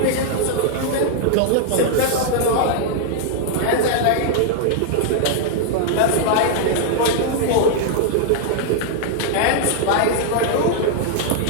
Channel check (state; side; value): different; both; correlation -0.01